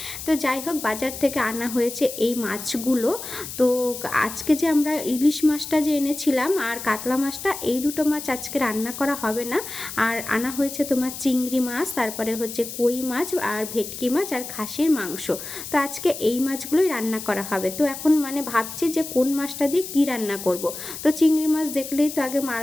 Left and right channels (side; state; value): left; noise; hiss, 9 dB below the sound